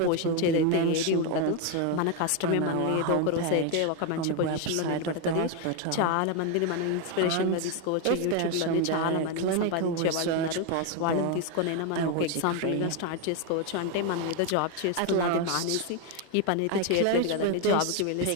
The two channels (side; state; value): both; different; correlation 0.01